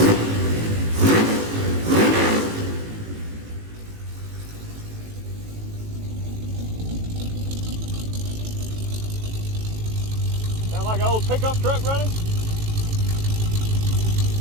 Sound like an old pickup truck running?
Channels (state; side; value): late; left; 18 ms